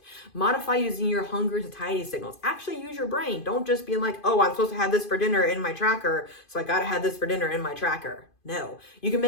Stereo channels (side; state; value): right; late; 2.5 ms